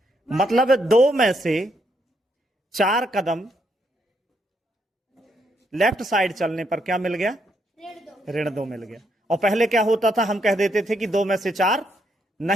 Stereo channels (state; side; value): normal; both; correlation 0.76